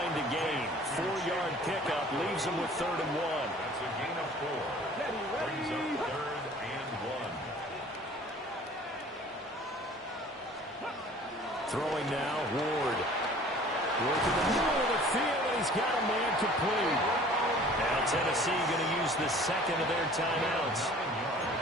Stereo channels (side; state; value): both; normal; correlation 0.49